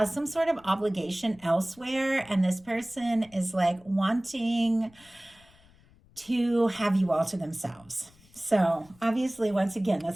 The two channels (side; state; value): left; noise; rumble, 28 dB below the sound